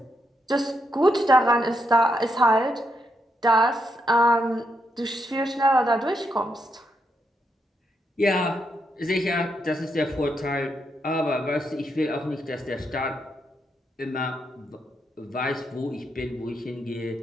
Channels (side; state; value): both; normal; correlation 0.81